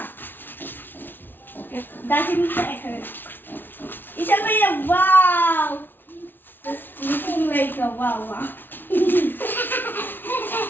ঈশান ভাইয়া, wow, it's looking like a wow wow.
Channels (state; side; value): late; right; 0.096 ms